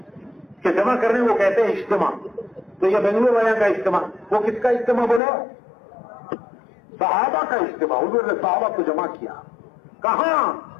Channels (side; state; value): right; drops out; at 5.2 s